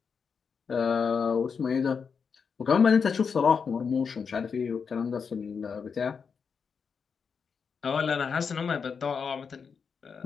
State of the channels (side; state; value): right; quieter; 6.0 dB